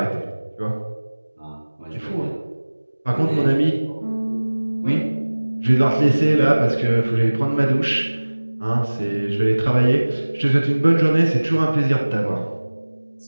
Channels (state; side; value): inverted; both; correlation -1.00